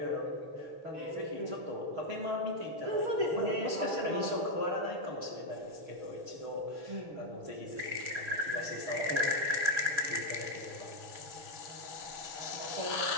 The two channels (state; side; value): late; left; 6.4 ms